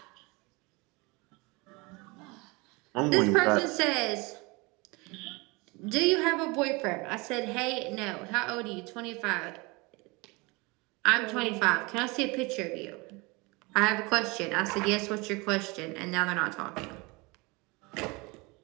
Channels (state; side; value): quieter; left; 26.1 dB